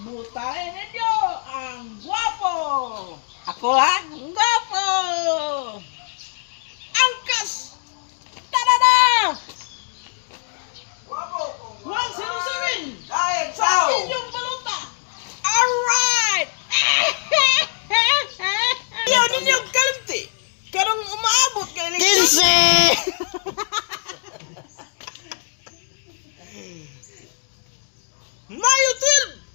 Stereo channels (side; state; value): right; silent; 63 dB below the other